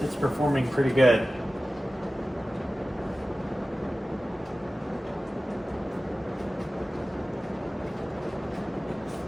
performing pretty good.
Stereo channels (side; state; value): both; normal; correlation 0.96